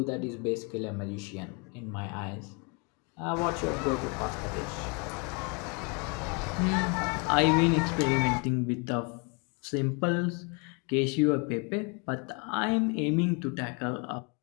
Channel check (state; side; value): quieter; right; 32.6 dB